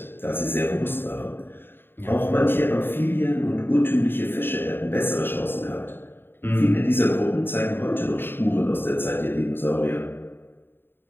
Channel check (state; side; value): late; right; 0.10 ms